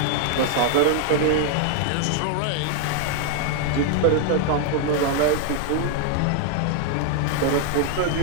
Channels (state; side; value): different; both; correlation 0.00